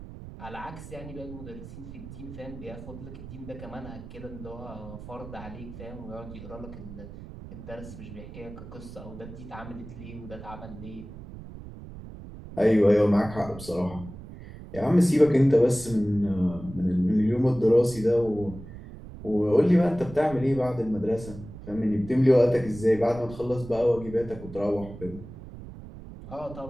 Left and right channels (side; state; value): right; noise; rumble, 14 dB below the sound